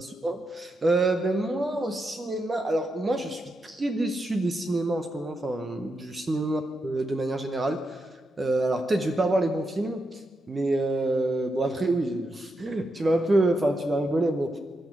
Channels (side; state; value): both; normal; correlation 0.85